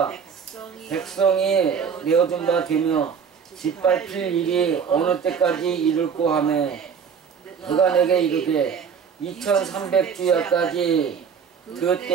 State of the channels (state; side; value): quieter; left; 6.7 dB